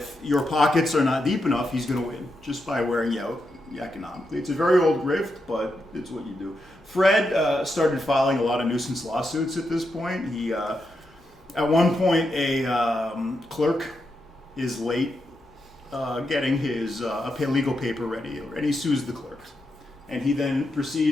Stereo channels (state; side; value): normal; both; correlation 0.85